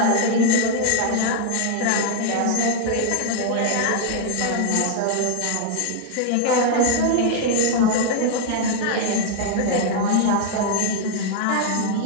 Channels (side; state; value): both; different; correlation 0.00